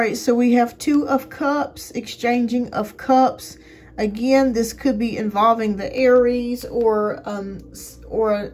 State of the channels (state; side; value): identical; both; correlation 1.00